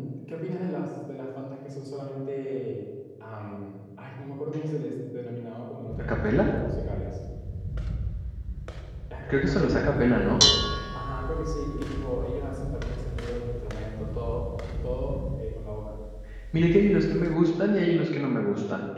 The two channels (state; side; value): identical; both; correlation 1.00